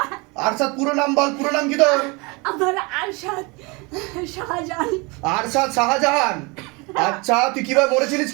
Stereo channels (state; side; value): quieter; left; 27.7 dB